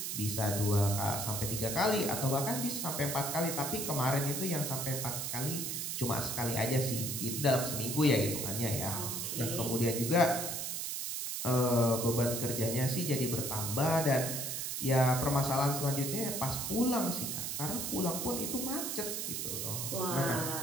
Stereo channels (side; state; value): right; noise; hiss, 3 dB below the sound